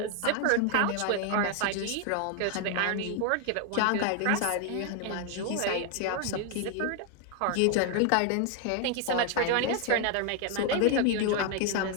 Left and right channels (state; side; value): different; both; correlation 0.00